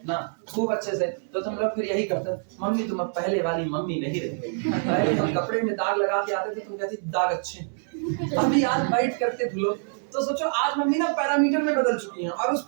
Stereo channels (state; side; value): silent; left; 58 dB below the other